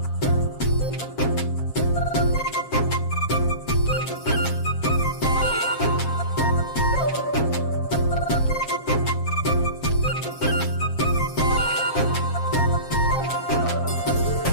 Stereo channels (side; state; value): right; late; 7.4 ms